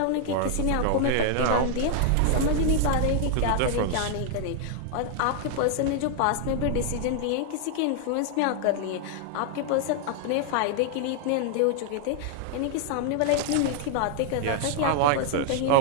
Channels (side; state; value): both; different; correlation 0.00